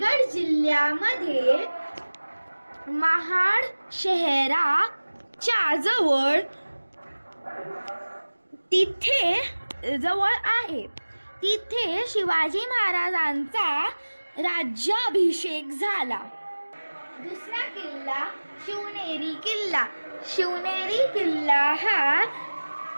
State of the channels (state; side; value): inverted; both; correlation -1.00